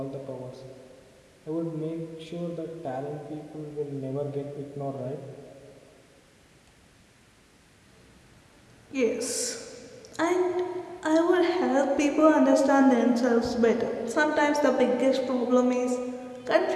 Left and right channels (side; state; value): both; identical; correlation 1.00